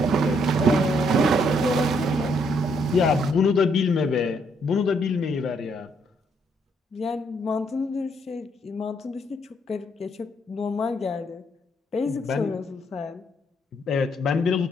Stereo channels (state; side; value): normal; both; correlation 0.72